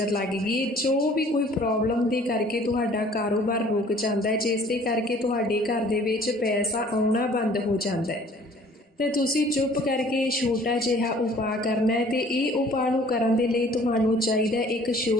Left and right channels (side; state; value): both; normal; correlation 0.53